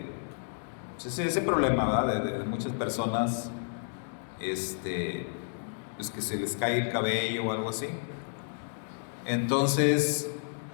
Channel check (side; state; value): right; silent; digital silence